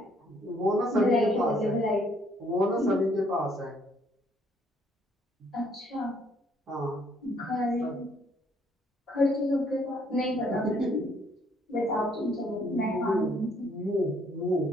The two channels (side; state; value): both; normal; correlation 0.66